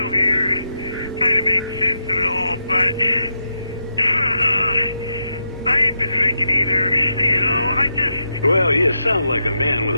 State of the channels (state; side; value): inverted; both; correlation -0.85